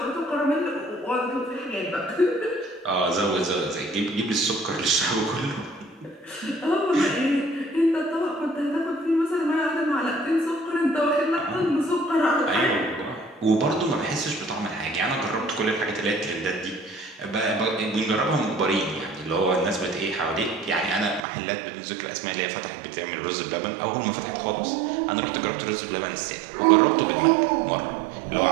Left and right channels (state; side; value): drops out; left; at 21.2 s